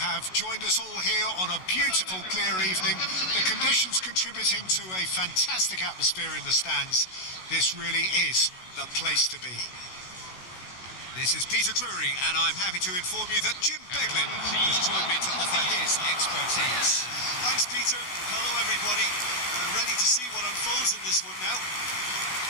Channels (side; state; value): right; late; 16 ms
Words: have joined us all here on a beautiful, clear evening. The conditions contributing to a fantastic atmosphere in the stands. This really is the place to be. This is Peter Drury, and I'm happy to inform you that Jim Beglin has joined me to offer his expertise. Thanks, Peter. Hello, everybody. Ready to see what unfolds in this one now.